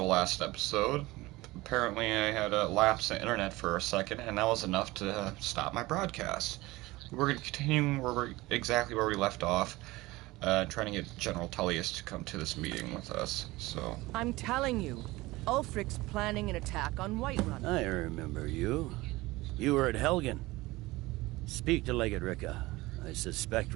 last episode. Apparently, I had a lapse in internet for a second, and that was enough to stop my broadcast. We're going to continue exactly where we left off, trying to get General Tullius to come to this meeting with us. So I'm telling you, Ulfric's planning an attack on Whiterun. I remember you. You were at Helgen. Speak to Legate Ricka. I suspect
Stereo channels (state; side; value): quieter; left; 20.1 dB